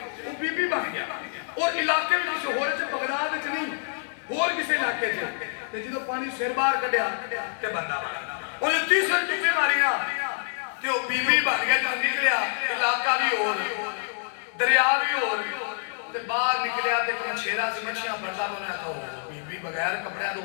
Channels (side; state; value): right; silent; digital silence